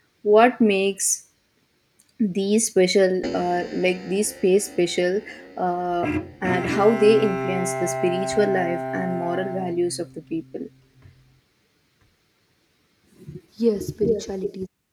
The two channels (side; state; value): both; identical; correlation 1.00